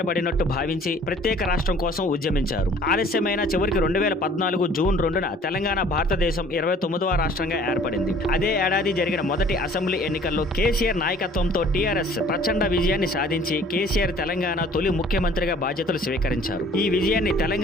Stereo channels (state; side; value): normal; both; correlation 0.53